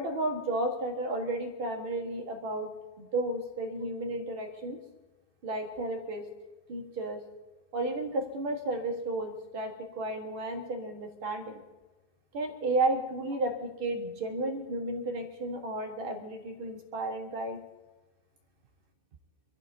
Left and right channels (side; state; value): left; late; 2.6 ms